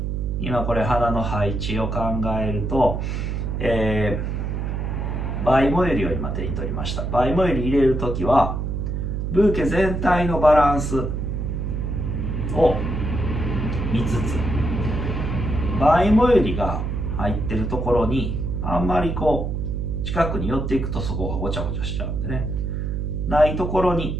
今これ花の配置を考えると、バイモユリを今手に取りました。バイモユリ入れるときはブーケ全体のバランスを見つつ、バイモユリが入ってるところにあんまりこう近くに寄っていくとそこがごちゃごちゃしちゃうんでね、ないところ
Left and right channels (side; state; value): right; noise; hum, 2 dB below the sound